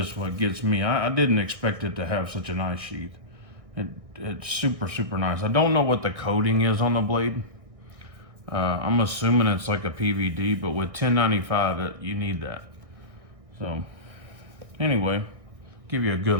what gets me. I didn't expect it to have such a nice sheath. It's super, super nice. I don't know what the coating is on the blade. I'm assuming it's like a PVD, but with 1095, you need that. So anyway, give you a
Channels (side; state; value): left; late; 1.6 ms